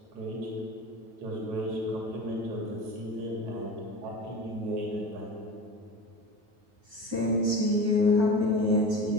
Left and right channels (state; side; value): late; left; 9.3 ms